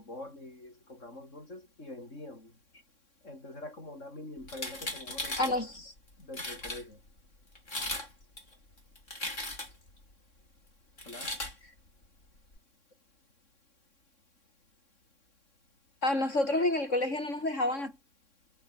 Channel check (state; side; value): late; right; 3.6 ms